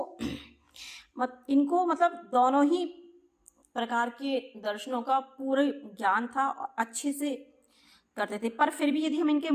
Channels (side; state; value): both; identical; correlation 1.00